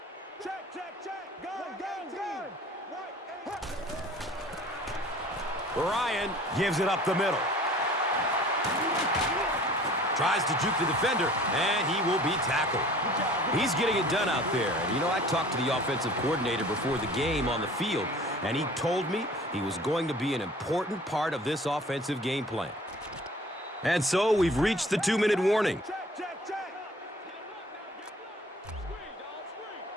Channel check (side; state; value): both; normal; correlation 0.49